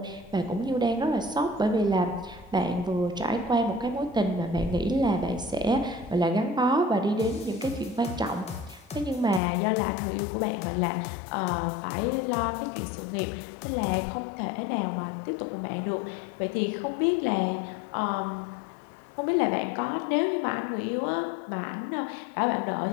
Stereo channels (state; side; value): drops out; right; at 9.4 s